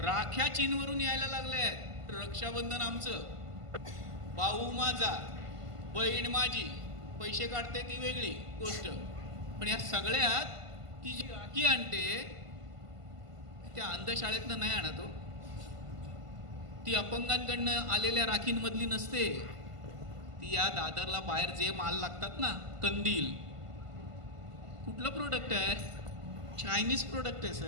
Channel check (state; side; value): late; left; 1.5 ms